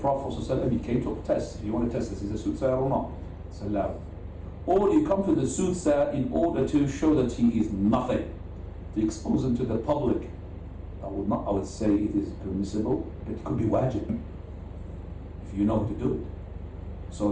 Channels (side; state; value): both; identical; correlation 1.00